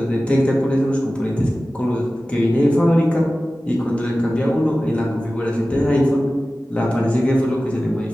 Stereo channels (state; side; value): normal; both; correlation 0.96